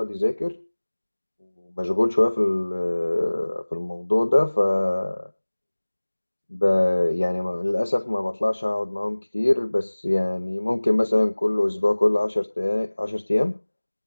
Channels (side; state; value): both; inverted; correlation -1.00